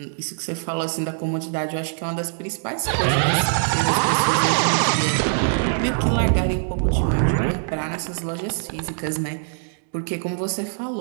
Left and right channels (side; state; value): left; silent; digital silence